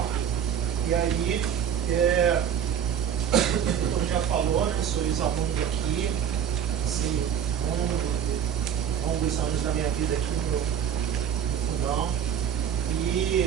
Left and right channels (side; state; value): left; quieter; 8.8 dB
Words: E aí, como já falou, né? Sou ex-aluno aqui, assim, longos anos da minha vida aqui no Fundão,